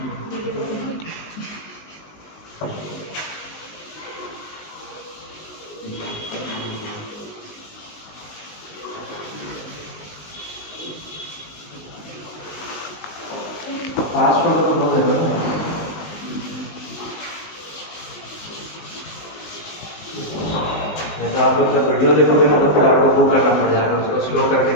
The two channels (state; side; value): late; right; 19 ms